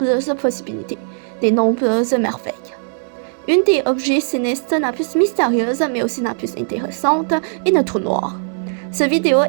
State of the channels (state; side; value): silent; left; digital silence